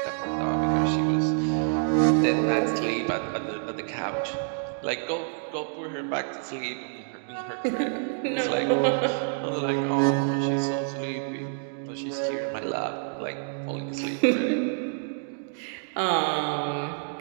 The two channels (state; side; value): silent; left; digital silence